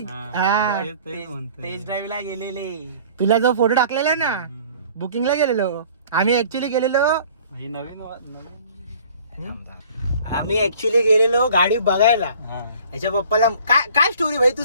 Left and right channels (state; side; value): inverted; both; correlation -0.51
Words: हा टेस्ट ड्राईव्हला गेलेले. तुला जो फोटो टाकलेला ना, बुकिंगला गेलेलो आम्ही. ऍक्च्युली गेलेलो, ही नवीन आम्ही ऍक्च्युली गेलेलो गाडी बघायला. हा. याच्या पप्पाला काय काय स्टोरी भाई, तू